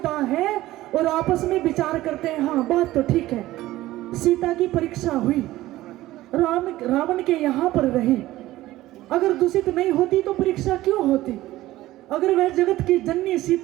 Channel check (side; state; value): left; quieter; 16.2 dB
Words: है और आपस में विचार करते हैं, हाँ बात तो ठीक है, सीता की परीक्षा हुई, रावण के यहाँ पर रही, अगर दूषित नहीं होती तो परीक्षा क्यों होती? अगर वह जगत की जननी